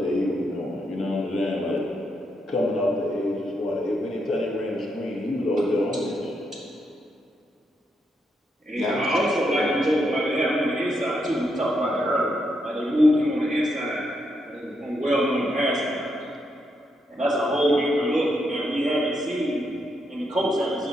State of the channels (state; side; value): normal; both; correlation 0.80